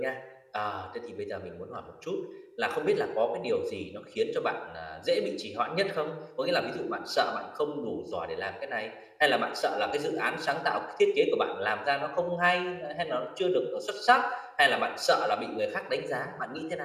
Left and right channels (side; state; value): both; identical; correlation 1.00